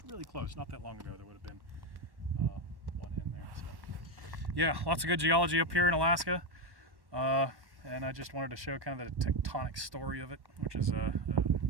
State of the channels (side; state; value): left; late; 1.1 ms